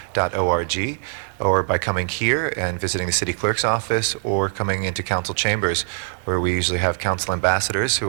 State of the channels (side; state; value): left; silent; digital silence